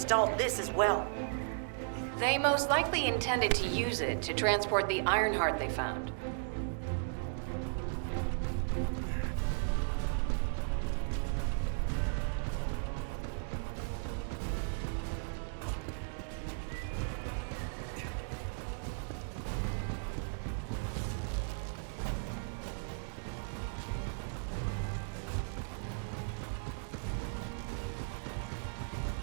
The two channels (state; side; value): silent; left; digital silence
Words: this as well. They most likely intended to use it to transport the Ironheart they found.